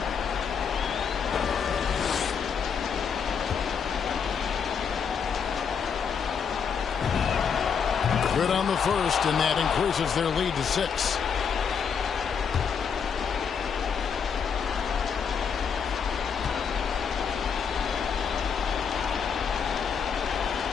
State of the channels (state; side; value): quieter; right; 6.7 dB